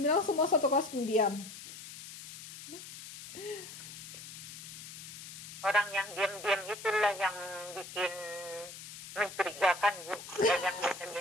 semua satu kelas pendiam. Orang yang diam-diam itulah yang bikin mencurigakan, Bu. Yang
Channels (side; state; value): left; noise; hiss, 12 dB below the sound